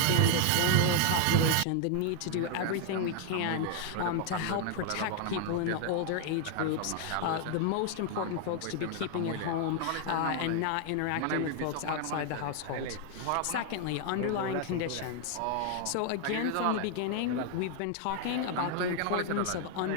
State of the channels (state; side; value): different; both; correlation 0.00